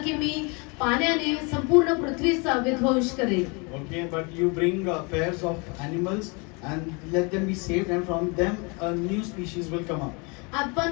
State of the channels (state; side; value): quieter; right; 30.7 dB